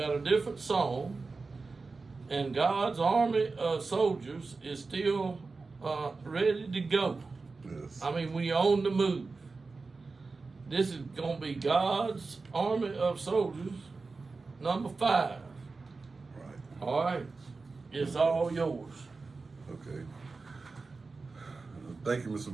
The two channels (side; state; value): left; quieter; 4.0 dB